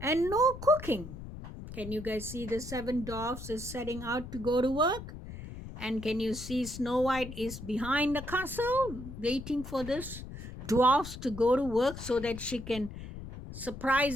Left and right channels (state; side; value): noise; left; rumble, 11 dB below the sound